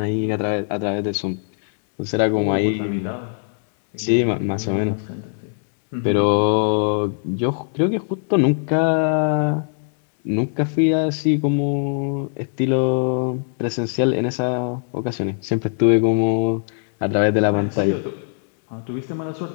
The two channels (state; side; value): silent; right; digital silence